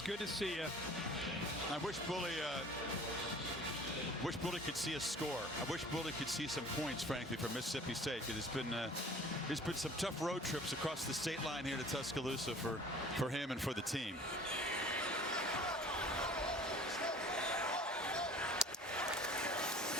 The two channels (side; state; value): both; normal; correlation 0.47